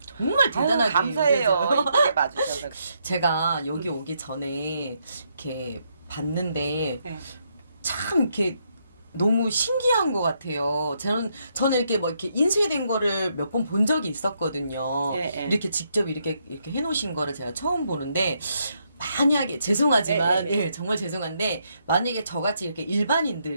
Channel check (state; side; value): inverted; both; correlation -0.77